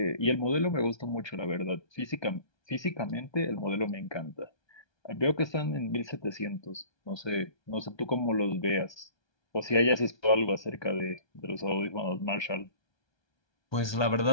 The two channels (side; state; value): right; late; 1.2 ms